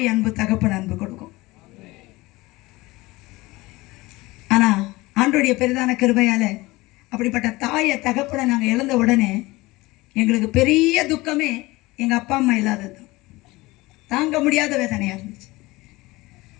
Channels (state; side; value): quieter; right; 20.9 dB